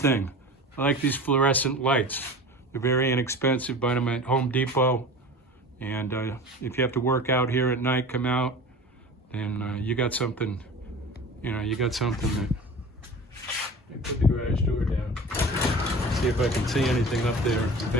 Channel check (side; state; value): both; normal; correlation 0.37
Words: I like these fluorescent lights. They're very inexpensive. Buy them at Home Depot. And if you have to work out here at night, come out, then you got something, you know, you got something that... Let me put the garage door down. See if I can see anything up there of